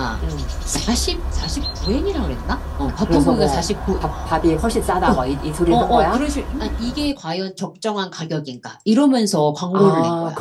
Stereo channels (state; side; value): identical; both; correlation 1.00